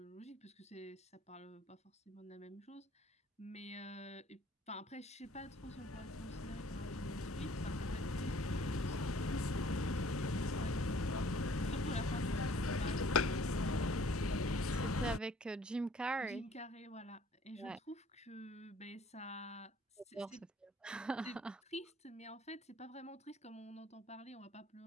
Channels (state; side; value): normal; both; correlation 0.56